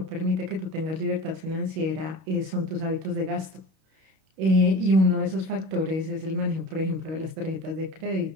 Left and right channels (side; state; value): left; late; 31 ms